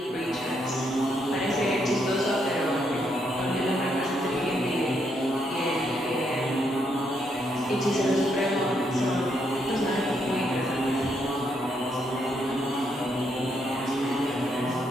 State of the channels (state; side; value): normal; both; correlation 0.76